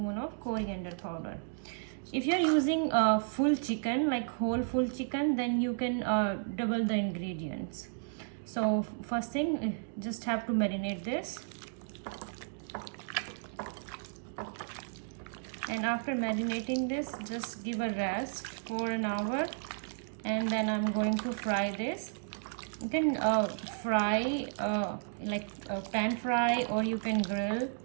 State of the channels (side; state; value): left; silent; digital silence